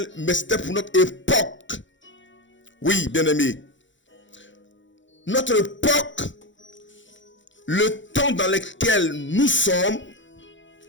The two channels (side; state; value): right; late; 0.55 ms